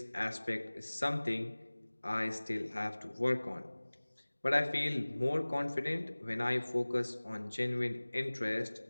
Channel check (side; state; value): both; inverted; correlation -1.00